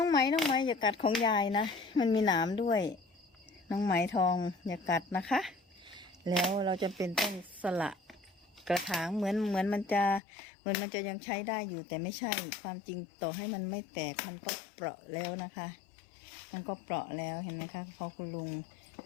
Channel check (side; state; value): right; drops out; at 10.2 s